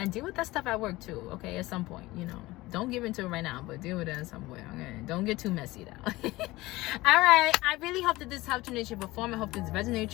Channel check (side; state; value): right; quieter; 19.5 dB